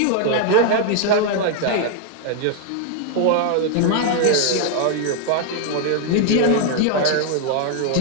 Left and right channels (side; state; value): both; different; correlation 0.00